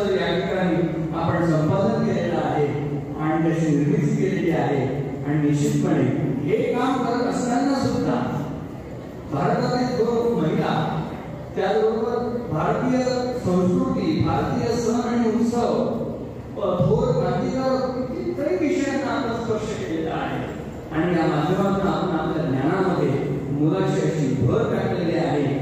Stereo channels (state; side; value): identical; both; correlation 1.00